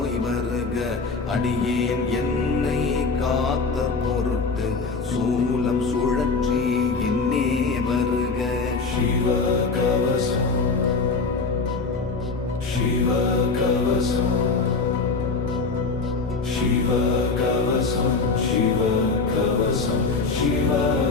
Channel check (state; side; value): quieter; right; 4.3 dB